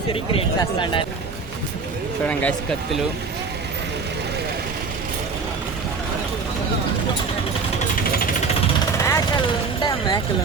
క్రియేట్ చేస్తాడు. చూడండి గైస్ కత్తులు. మేకలు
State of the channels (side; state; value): left; quieter; 4.7 dB